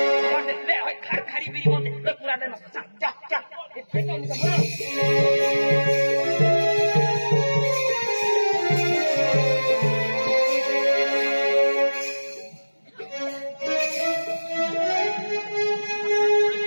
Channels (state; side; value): inverted; both; correlation -1.00